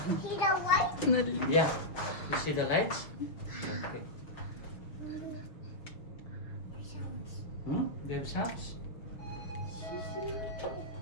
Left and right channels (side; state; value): right; late; 6.4 ms